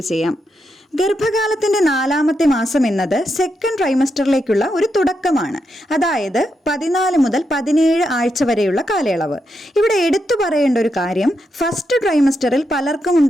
ചെയ്യാം. ഗർഭകാലത്തിന്റെ 4ാമത്തെ മാസം എന്നത് സെക്കൻഡ് ട്രൈമസ്റ്ററിലേക്കുള്ള ഒരു തുടക്കമാണ്. അതായത് 14 മുതൽ 17 ആഴ്ച വരെയുള്ള കാലയളവ്. ഇവിടെ എടുത്തു പറയേണ്ട ഒരു കാര്യം, ഫസ്റ്റ് ട്രൈമസ്റ്ററിൽ പലർക്കും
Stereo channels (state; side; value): normal; both; correlation 0.83